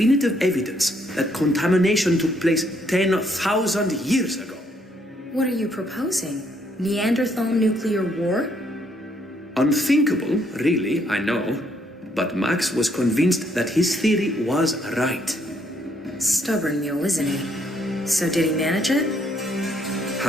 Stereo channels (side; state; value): both; normal; correlation 0.70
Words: evidence that contamination took place 10,000 years ago. What are you proposing? Neanderthal nuclear war? Unthinkable, really, I know. But Max was convinced that his theory was right. Stubborn mule, isn't he? So did he manage it?